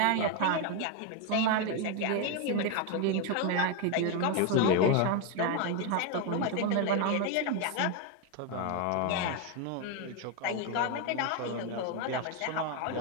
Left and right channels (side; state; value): both; different; correlation 0.01